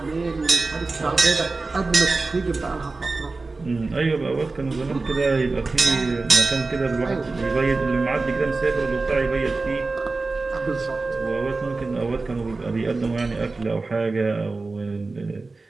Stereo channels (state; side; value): quieter; left; 3.6 dB